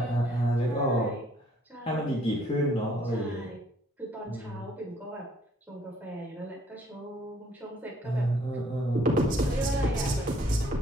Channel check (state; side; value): normal; both; correlation 0.64